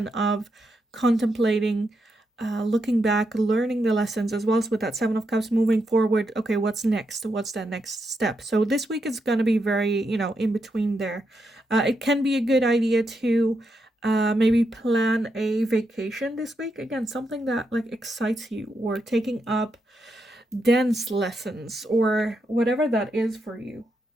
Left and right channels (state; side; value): normal; both; correlation 0.83